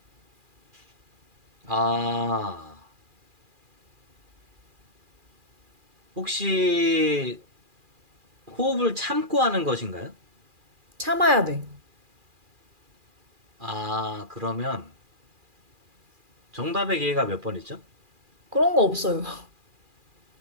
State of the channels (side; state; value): left; late; 2.4 ms